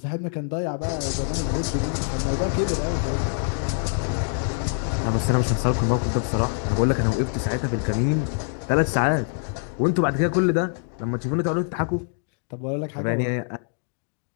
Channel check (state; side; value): silent; right; 60 dB below the other